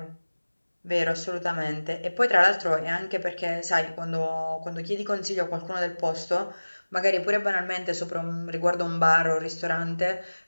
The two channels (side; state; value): both; inverted; correlation -1.00